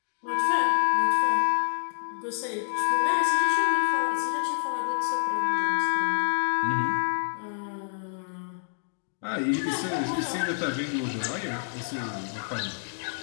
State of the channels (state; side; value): silent; right; digital silence